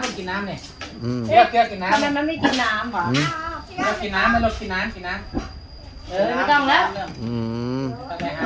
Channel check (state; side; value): identical; both; correlation 1.00